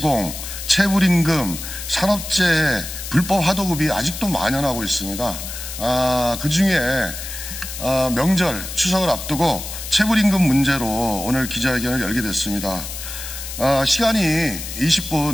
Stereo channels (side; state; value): left; noise; hiss, 9 dB below the sound